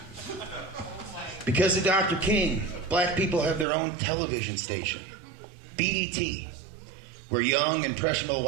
Because of Dr. King, black people have their own television station, BET, where young, impressionable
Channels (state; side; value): drops out; left; at 3.7 s